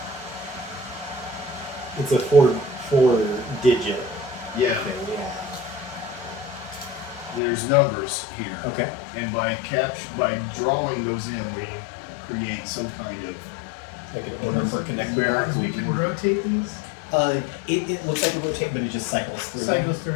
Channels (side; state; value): right; drops out; at 7.4 s